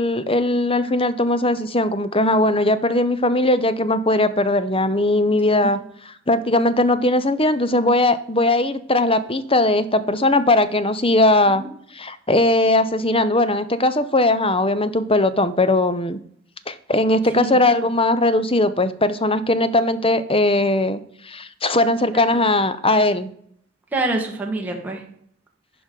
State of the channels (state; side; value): normal; both; correlation 0.27